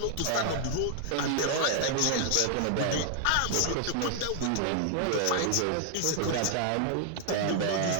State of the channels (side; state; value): both; different; correlation 0.00